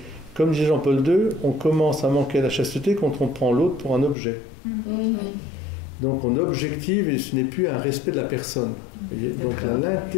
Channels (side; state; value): right; drops out; at 4.2 s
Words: comme disait Jean-Paul II, on commence à manquer à la chasteté quand on prend l'autre pour un objet. Donc on objective et ce n'est plus un respect de la personne. Voyez, donc